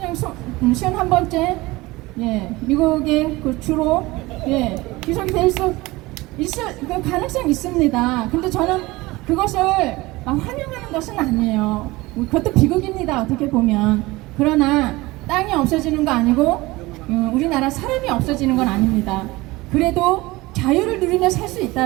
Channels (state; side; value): quieter; left; 20.8 dB